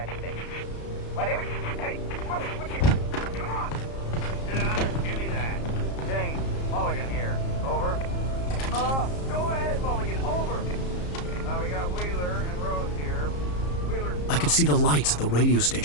But anyway, hey, Mulligan, what you... Come on. Sit down and give me that. James, Mulligan here. Over. Go ahead, Mulligan. Over. We got Wheeler and Rose here. Wheeler's... I could see the lights of the radio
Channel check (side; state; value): right; late; 34 ms